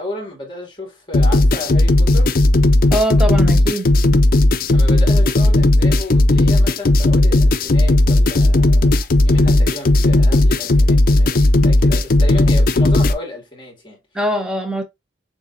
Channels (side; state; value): both; normal; correlation 0.86